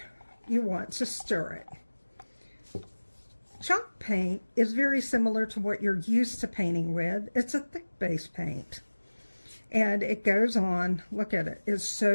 you want to stir it. Chalk paint is very similar to what you're used to painting with. It's a thick base paint. And it goes on, look at it, it's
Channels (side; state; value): both; inverted; correlation -1.00